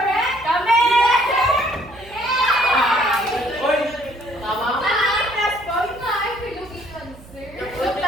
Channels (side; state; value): right; noise; hum, 21 dB below the sound